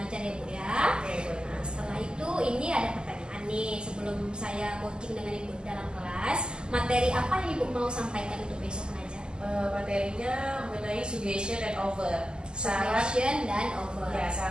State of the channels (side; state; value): left; late; 0.047 ms